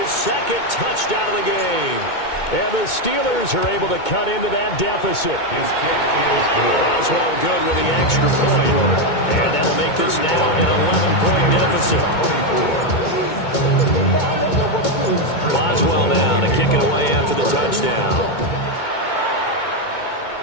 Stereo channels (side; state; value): right; late; 2.2 ms